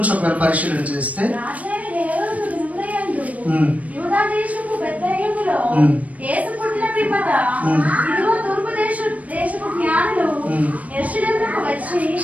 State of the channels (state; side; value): late; left; 0.069 ms